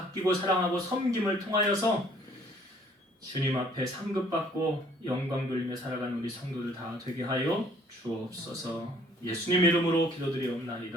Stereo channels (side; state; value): both; normal; correlation 0.59